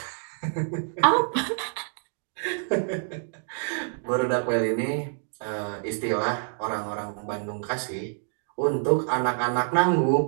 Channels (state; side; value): silent; left; 60 dB below the other